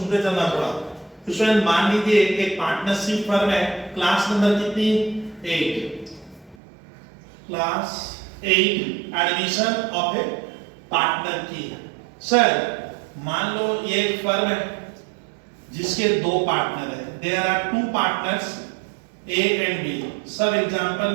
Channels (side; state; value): left; drops out; at 6.6 s